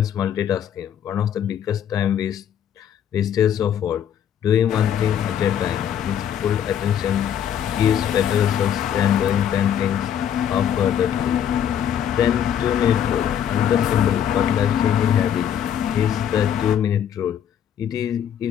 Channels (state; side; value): quieter; right; 9.4 dB